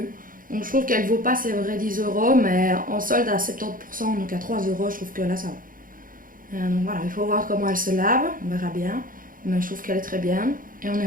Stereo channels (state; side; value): late; left; 0.40 ms